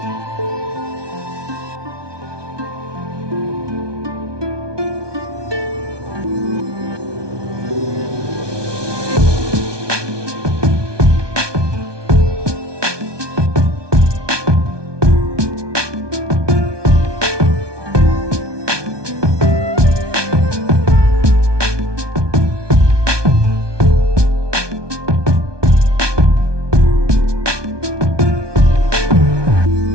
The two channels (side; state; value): left; late; 1.2 ms